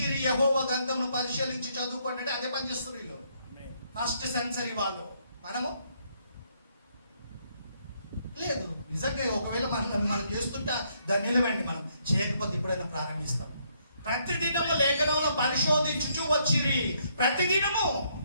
యెహోవా గ్రంథమును పరిశీలించి చదువుకోండి అంటే అదే పని చేస్తారు వీళ్ళు. ఫస్ట్ సెంచరీ వాళ్ళు. మనము లేదు. నిజంగా ఒకవేళ మనం చేస్తుంటే దాన్ని నిలవండి, మనం చేయకపోతే ఇప్పుడైనా ప్రారంభిస్తాం. ప్రతిదినము లేఖనంలో పరిశోధించుచు వచ్చిరి. ప్రతిదినము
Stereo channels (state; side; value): inverted; both; correlation -0.72